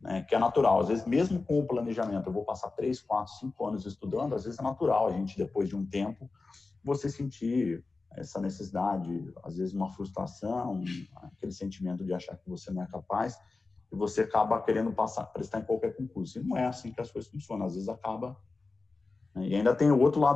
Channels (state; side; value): quieter; right; 3.8 dB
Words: né, que é natural. Às vezes, mesmo com o planejamento, eu vou passar 3, 4, 5 anos estudando, às vezes é natural a gente, depois de um tempo, você sentir essa necessidade, às vezes uma frustração, aquele sentimento de achar que você não é capaz, e você acaba querendo prestar em qualquer concurso. E não é assim que as coisas funcionam. Às vezes acaba... Né, e ainda tem o outro